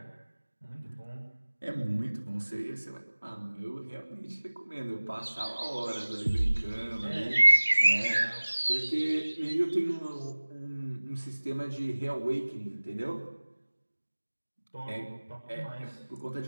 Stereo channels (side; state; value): both; inverted; correlation -1.00